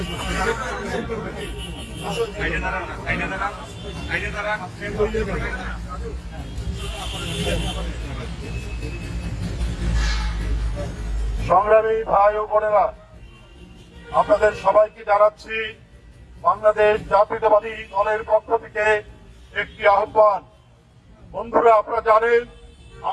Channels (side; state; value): both; identical; correlation 1.00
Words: সংগ্রামী ভাই ও বোনেরা, আপনাদের সবাইকে জানাচ্ছি বাংলাদেশ জাতীয়তাবাদী দলের পক্ষ থেকে একটি আহ্বান। বন্ধুরা, আপনারা জানেন